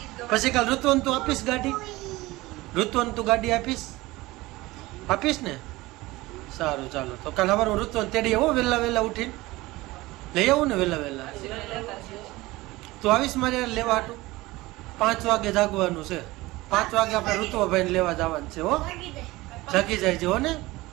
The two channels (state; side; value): quieter; left; 19.8 dB